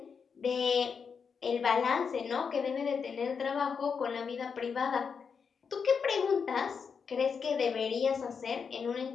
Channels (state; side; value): quieter; right; 6.1 dB